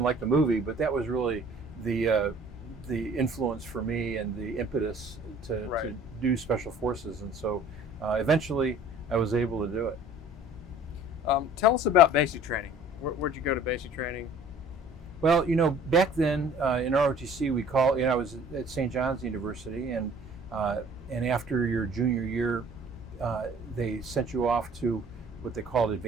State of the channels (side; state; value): both; normal; correlation 0.51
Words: like the movie, but that was really the influence for me and the impetus to do Special Forces. And so eventually I was able to do it. Tell us about basic training. Where'd you go to basic training? Well, back then in ROTC, I was at St. John's University, and after your junior year, they sent you off to what they called